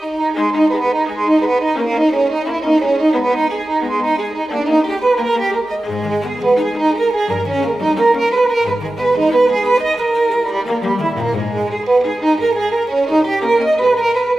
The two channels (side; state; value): both; normal; correlation 0.94